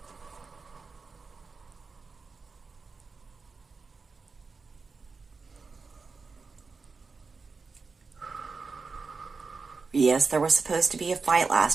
yes, there was supposed to be a fight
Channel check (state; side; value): quieter; left; 4.5 dB